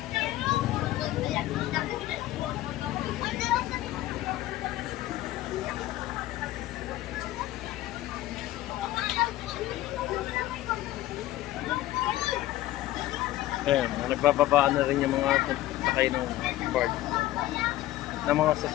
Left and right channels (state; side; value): quieter; right; 15.5 dB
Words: Ayan, nagbababaan na rin yung mga sakay ng board ng mga